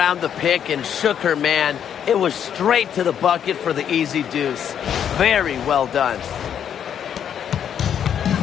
the pick and shook her man, it was straight to the bucket for the easy deuce. Very well done.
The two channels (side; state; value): right; quieter; 8.8 dB